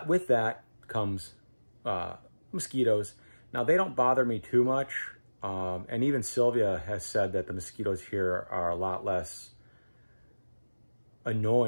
with that comes mosquitoes. Now, they don't bother me too much, and even Sylvia has said that the mosquitoes here are a lot less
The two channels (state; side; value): inverted; both; correlation -1.00